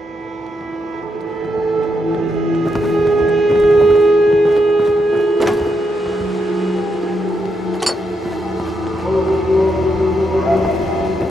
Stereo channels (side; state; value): both; normal; correlation 0.81